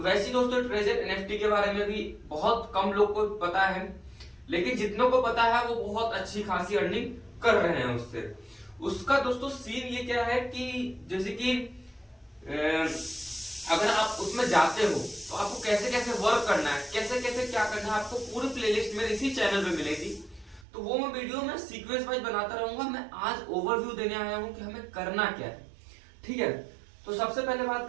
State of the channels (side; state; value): left; drops out; at 20.7 s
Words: दोस्तों, ट्रेजर एनएफटी के बारे में भी बहुत कम लोग को पता है, लेकिन जितनों को पता है वो बहुत अच्छी खासी अर्निंग कर रहे हैं उससे। उसका दोस्तों सीन ये क्या है कि जैसे कि अगर आप उसमें जाते हो तो आपको कैसे कैसे वर्क करना है, कैसे कैसे क्या करना है, आपको पूरी प्लेलिस्ट मेरे इसी चैनल पे मिलेगी। तो वो मैं वीडियो में सीक्वेंस वाइज बनाता रहूंगा। मैं आज ओवरव्यू देने आया हूं कि हमें करना क्या है। ठीक है, तो सबसे पहले बात